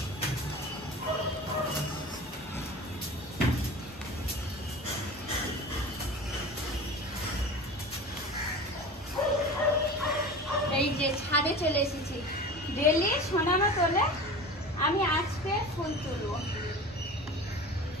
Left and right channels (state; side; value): normal; both; correlation 0.34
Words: এই যে ছাদে চলে এসেছি। ডেলি সোনামা তোলে, আমি আজকে ফুল তুলবো।